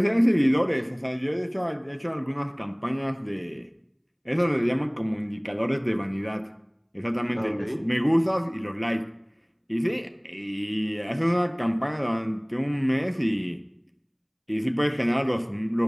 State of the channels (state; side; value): identical; both; correlation 1.00